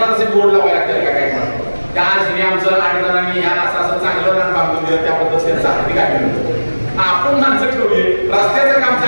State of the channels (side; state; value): both; inverted; correlation -1.00